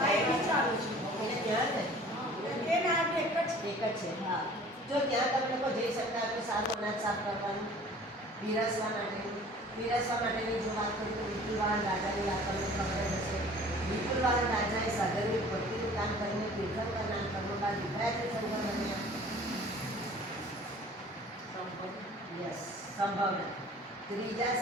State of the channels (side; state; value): both; normal; correlation 0.48